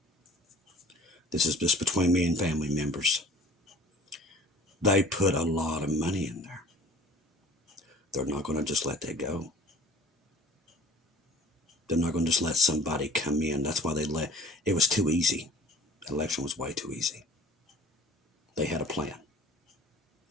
This is just between me and family members. They put a lot of money in there. They're not going to just let that go. They're not going to just let somebody come in. That's why it was too easy. The election was way too easy. They had a plan.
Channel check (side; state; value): both; normal; correlation 0.47